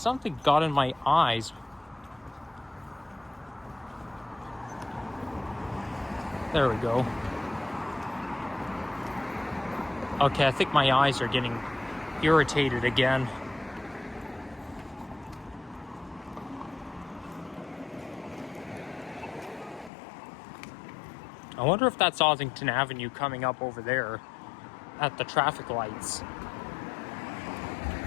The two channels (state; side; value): drops out; right; at 19.9 s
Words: got in my eyes. There we go. Okay, I think my eyes are getting irritated again. I wonder if that's Ossington Avenue coming up over there at the traffic lights.